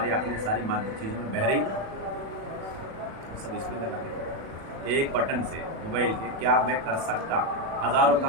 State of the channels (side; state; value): left; late; 36 ms